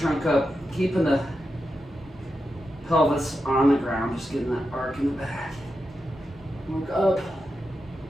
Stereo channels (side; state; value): both; normal; correlation 0.88